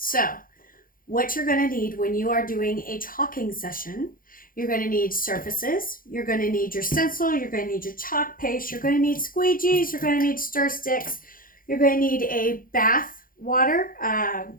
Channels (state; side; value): late; right; 0.41 ms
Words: what you're going to need when you are doing a chalking session, you're going to need surfaces, you're going to need your stencil, you're going to need your chalk paste, you're going to need squeegees, you're going to need stir sticks, you're going to need a bath water.